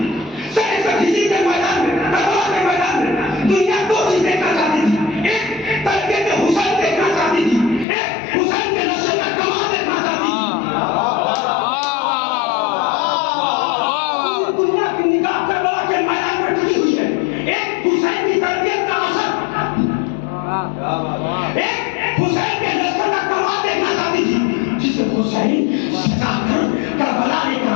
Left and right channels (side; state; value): right; drops out; at 7.9 s